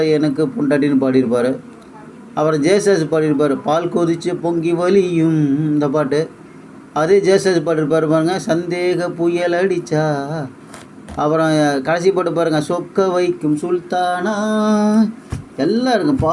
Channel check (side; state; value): both; identical; correlation 1.00